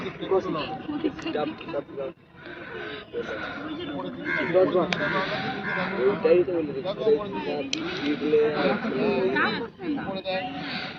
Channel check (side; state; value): both; identical; correlation 1.00